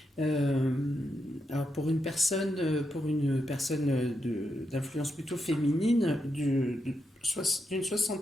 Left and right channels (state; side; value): normal; both; correlation 0.84